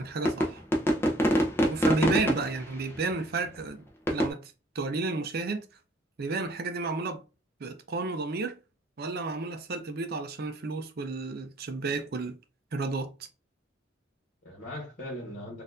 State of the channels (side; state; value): both; normal; correlation 0.60